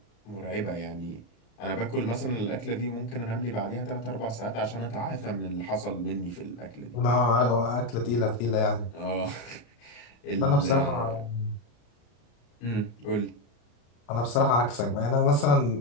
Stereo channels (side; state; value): right; late; 34 ms